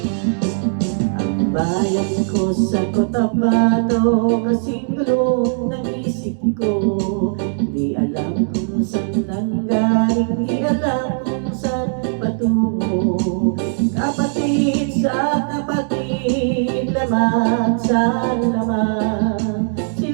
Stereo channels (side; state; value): left; silent; digital silence